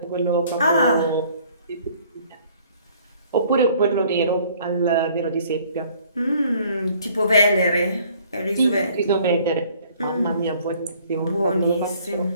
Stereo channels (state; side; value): inverted; both; correlation -0.58